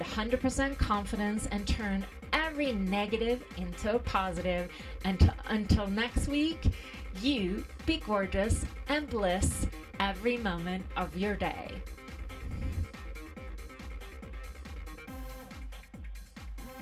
100% confidence and turn every negative into a positive. And until next week, you be gorgeous and bliss every moment of your day.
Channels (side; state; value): both; identical; correlation 1.00